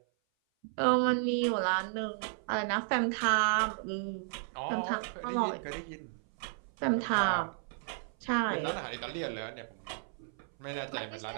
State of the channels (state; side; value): silent; left; 56 dB below the other